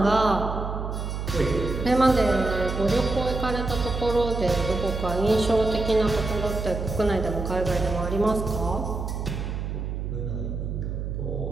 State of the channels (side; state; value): right; noise; hum, 4 dB below the sound